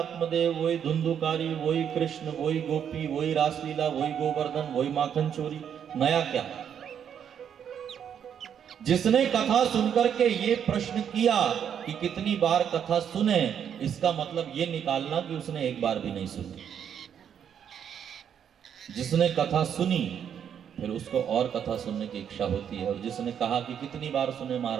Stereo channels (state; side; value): quieter; left; 8.5 dB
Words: वही धुंधुकारी, वही कृष्ण, वही गोपी, वही रासलीला, वही गोवर्धन, वही माखन चोरी, नया क्या? जिसने कथा सुनकर के ये प्रश्न किया कि कितनी बार कथा सुने, इसका मतलब ये निकालना कि उसने एक बार भी नहीं सुनी। जिसने कथा सुनी फिर उसको और कथा सुनने की इच्छा होती है, और जिसने कहा कि कितनी बार सुने